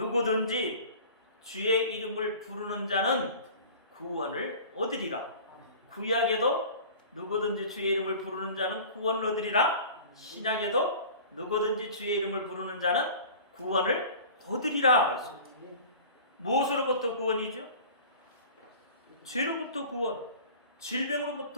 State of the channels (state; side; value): inverted; both; correlation -0.41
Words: 주의 이름을 부르는 자는 구원을 얻으리라. 구약에도 누구든지 주의 이름을 부르는 자는 구원을 얻으리라. 신약에도 누구든지 주의 이름을 부르는 자는 구원을 얻으리라. 무엇으로부터 구원이죠? 죄로부터 구원,